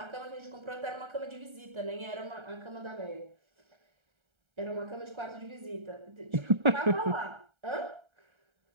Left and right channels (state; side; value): late; left; 1.3 ms